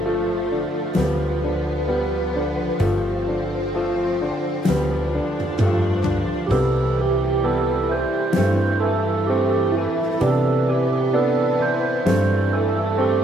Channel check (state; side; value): normal; both; correlation 0.73